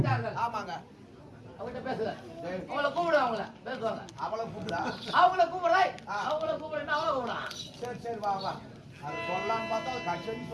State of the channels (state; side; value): identical; both; correlation 1.00